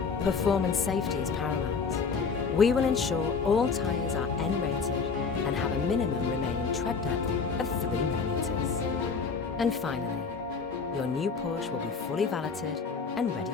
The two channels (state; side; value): quieter; right; 5.3 dB